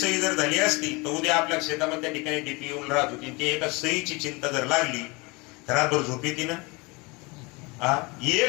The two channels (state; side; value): quieter; right; 26.6 dB